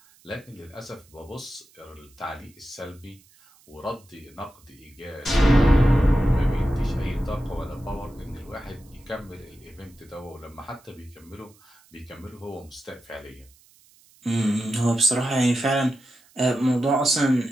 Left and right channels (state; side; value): noise; right; hiss, 29 dB below the sound